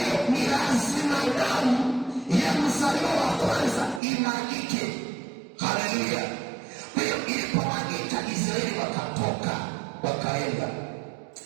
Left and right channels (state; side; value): drops out; left; at 4.0 s